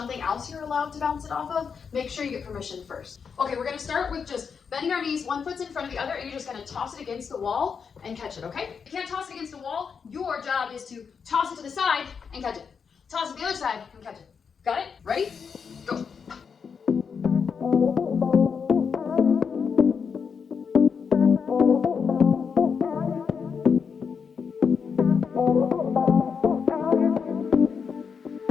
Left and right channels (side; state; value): right; quieter; 6.2 dB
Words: else you're allowed to bounce it off of, make sure you get permission first. Okay, we're gonna start with just bending our knees, one foot's in front of the other, and you're just gonna toss it against the wall and catch it, okay? If you can't toss it against the wall, your job is to toss it to the side and catch it. Toss it to the other side and catch it. Got it? Ready? Go.